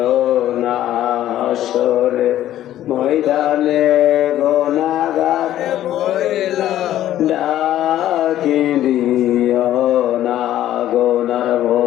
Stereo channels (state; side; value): quieter; right; 12.7 dB